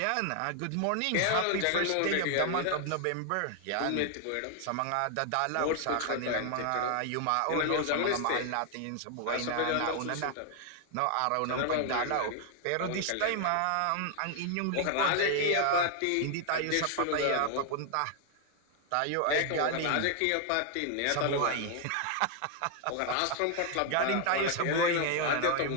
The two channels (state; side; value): different; both; correlation 0.00